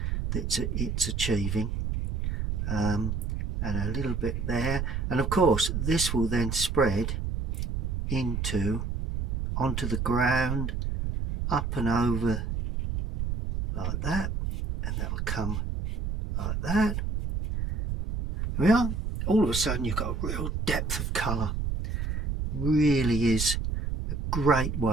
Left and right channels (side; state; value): right; noise; rumble, 2 dB below the sound